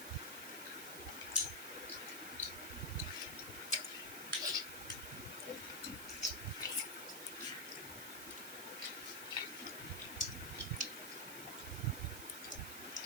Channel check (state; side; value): noise; right; hiss, 7 dB below the sound